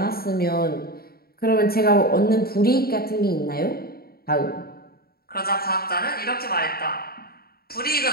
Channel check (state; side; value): late; right; 0.44 ms